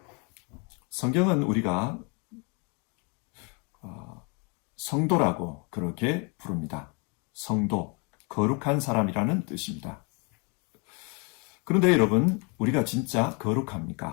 성경은 우리가 성도라고 그렇게 부릅니다. 성도, 거룩한 사람이라는 뜻입니다. 그런데 여러분, 우리가 진짜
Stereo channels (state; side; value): quieter; right; 33.5 dB